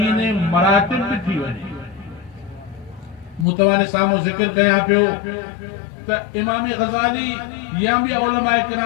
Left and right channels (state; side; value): drops out; right; at 3.5 s